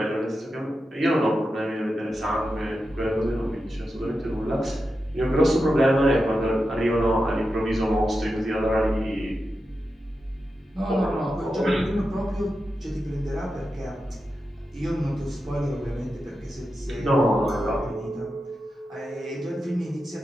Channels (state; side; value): normal; both; correlation 0.90